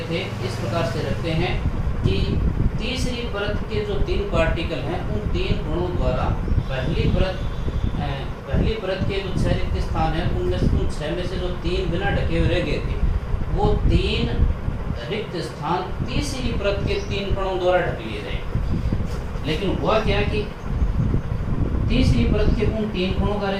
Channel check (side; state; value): both; identical; correlation 1.00